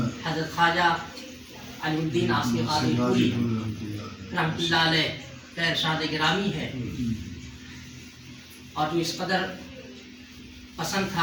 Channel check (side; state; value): both; identical; correlation 1.00